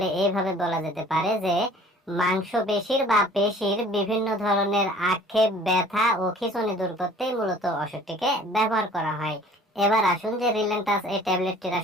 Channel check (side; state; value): both; normal; correlation 0.51